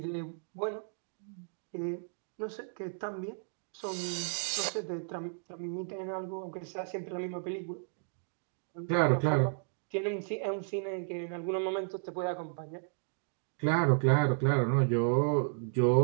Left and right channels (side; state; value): left; silent; digital silence